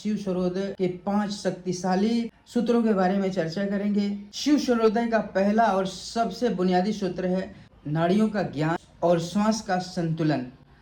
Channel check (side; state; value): both; identical; correlation 1.00